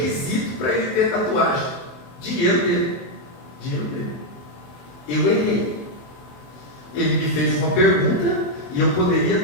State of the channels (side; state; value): right; late; 23 ms